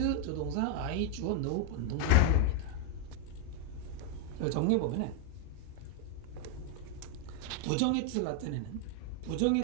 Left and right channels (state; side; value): different; both; correlation 0.01